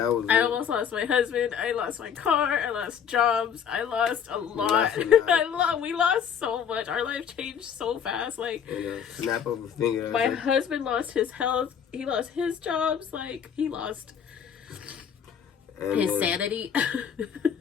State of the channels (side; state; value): right; quieter; 8.0 dB